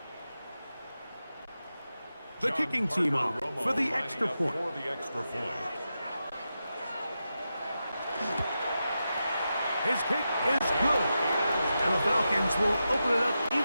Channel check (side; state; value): both; inverted; correlation -0.90